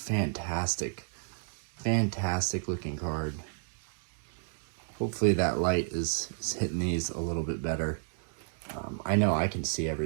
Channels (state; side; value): silent; left; digital silence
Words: looking card. Hopefully that light is hitting these a little bit better. I know I can see